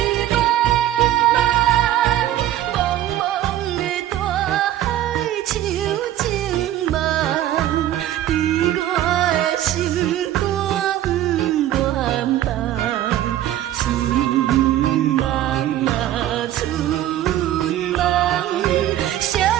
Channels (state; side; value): quieter; left; 12.9 dB